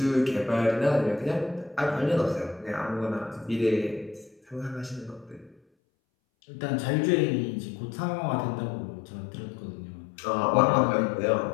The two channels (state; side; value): drops out; right; at 5.6 s